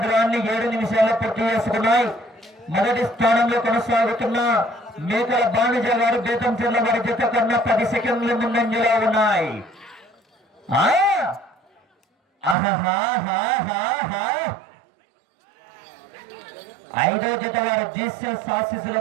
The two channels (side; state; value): left; drops out; at 12.6 s